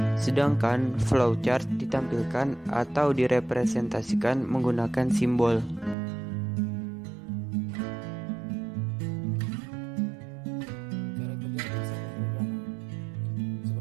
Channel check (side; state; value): left; drops out; at 6.0 s